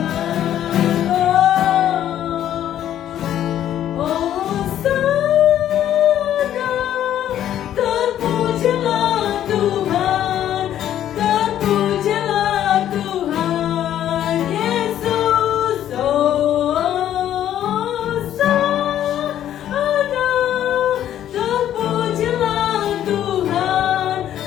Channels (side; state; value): right; quieter; 11.2 dB